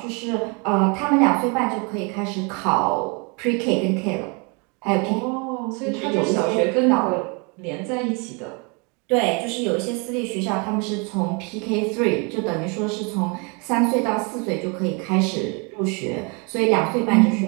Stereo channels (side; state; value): left; quieter; 32.5 dB